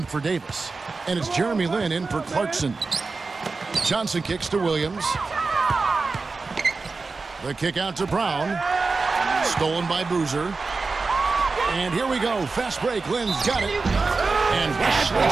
for Davis. And it's Jeremy Lin in for Clarkson. Johnson kicks to Williams. The kick out to Brown. Stolen by Boozer. And here we go. Fast break. Lin's got it. And Wesley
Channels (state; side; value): quieter; left; 4.1 dB